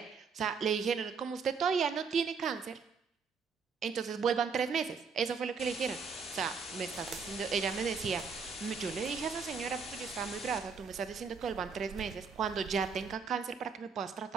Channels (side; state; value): left; quieter; 5.5 dB